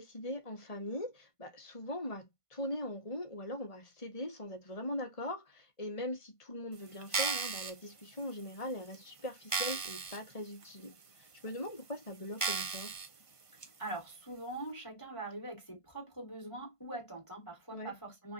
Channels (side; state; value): right; late; 1.5 ms